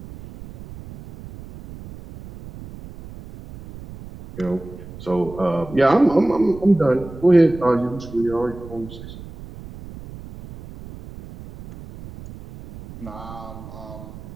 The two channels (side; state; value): right; noise; rumble, 15 dB below the sound